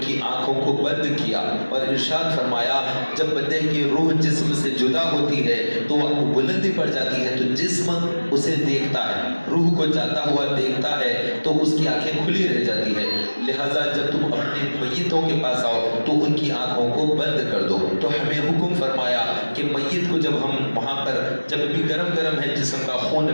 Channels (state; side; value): inverted; both; correlation -1.00